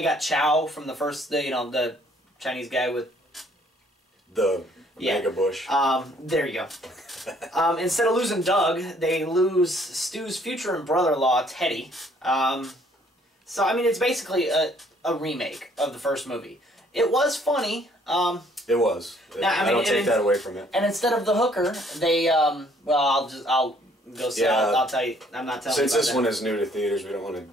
got Chow from the first, the Chinese guy with the mega bush. There you go. Instead of losing Doug, they lose Stu's future and brother-in-law Teddy. So I mean, it's basically a remake of the first movie. It was funny. It was. I don't take that away from it. And instead of the hooker, they I'll go see. Yeah, I'll tell you. I'm not telling you. Since this one is new to theaters, we don't want to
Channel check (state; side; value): normal; both; correlation 0.62